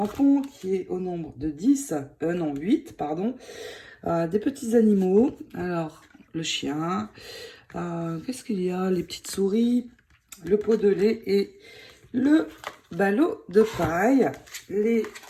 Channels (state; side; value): identical; both; correlation 1.00